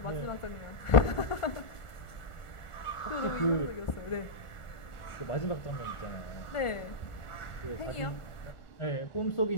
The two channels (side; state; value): right; late; 1.4 ms